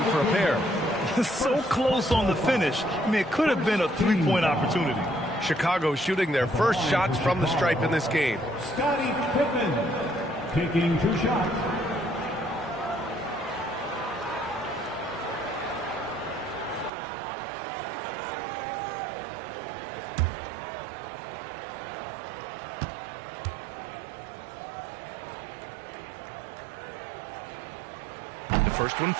for a pair. So close on the finish. I mean, it could have been a three-point opportunity. Chicago shooting their first shots from the stripe in this game. Scottie Pippen taking 2 shots. The first one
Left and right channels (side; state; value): left; drops out; at 16.9 s